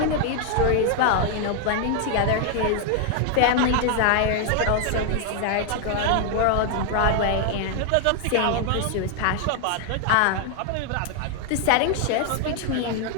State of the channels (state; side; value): different; both; correlation 0.00